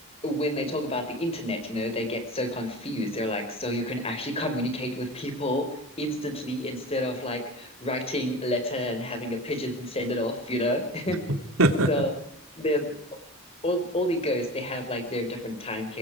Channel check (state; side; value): normal; both; correlation 0.33